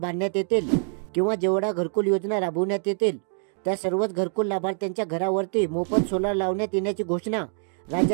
येतील किंवा जेवढा घरकुल योजना राबवण्यात येतील त्या सर्वच घरकुल लाभार्थ्यांच्या घरावरती मोफत सोलार लावण्यात येण्याची घोषणा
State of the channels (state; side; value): silent; left; 55 dB below the other